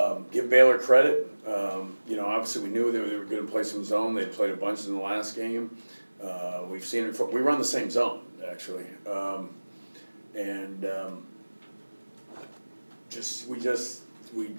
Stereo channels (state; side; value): inverted; both; correlation -1.00